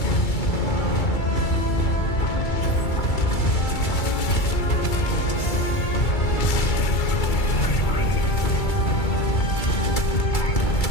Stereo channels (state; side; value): late; right; 2.3 ms